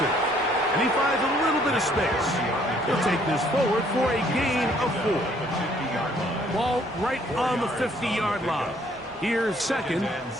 And he finds a little bit of space. He'll take this forward for a gain of 4. Ball right on the 50-yard line. Here's second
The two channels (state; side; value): normal; both; correlation 0.63